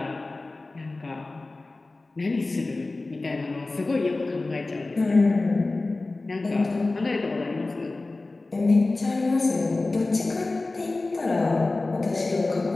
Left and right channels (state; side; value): quieter; right; 3.2 dB